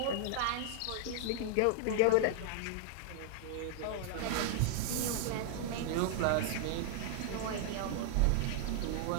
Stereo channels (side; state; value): both; different; correlation 0.00